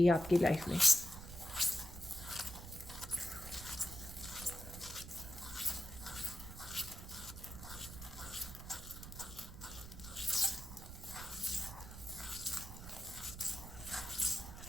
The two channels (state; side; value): noise; right; rumble, 12 dB below the sound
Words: आपकी लाइफ में।